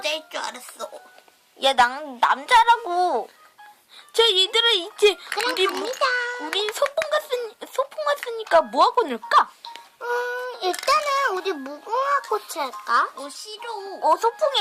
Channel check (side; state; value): both; identical; correlation 1.00